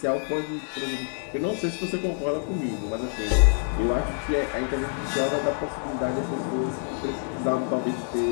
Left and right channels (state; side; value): silent; right; digital silence